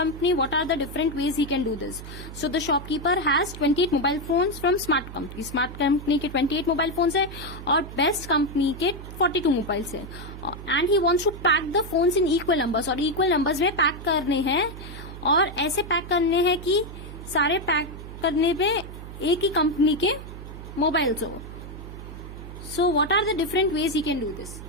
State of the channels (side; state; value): right; noise; hum, 12 dB below the sound